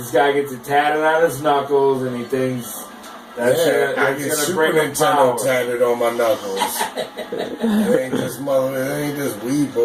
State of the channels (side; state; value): both; identical; correlation 1.00